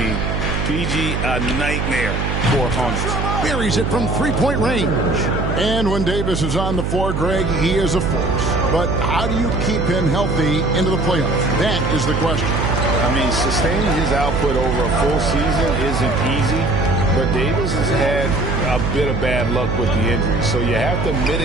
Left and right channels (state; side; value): noise; right; hum, 1 dB below the sound